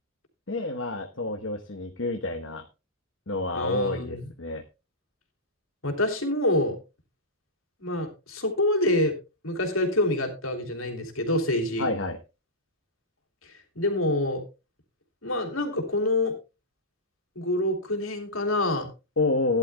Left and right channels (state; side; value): normal; both; correlation -0.15